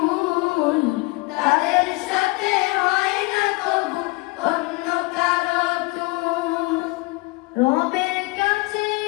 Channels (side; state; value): right; quieter; 25.6 dB